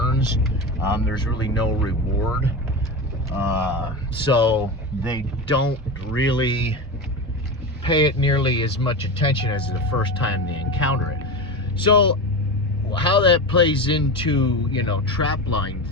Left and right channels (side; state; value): both; normal; correlation 0.23